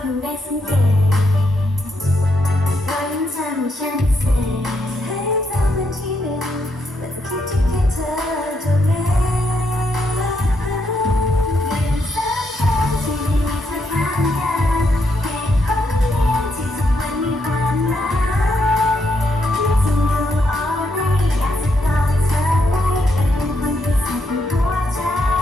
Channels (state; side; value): normal; both; correlation 0.78